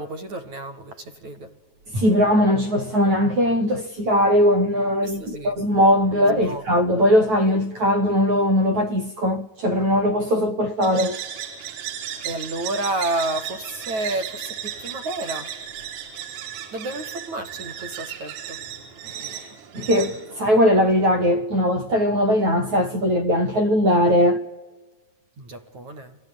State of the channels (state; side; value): late; left; 9.3 ms